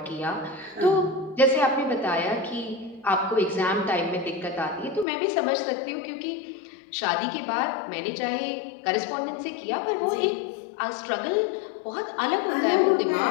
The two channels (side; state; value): right; drops out; at 5.1 s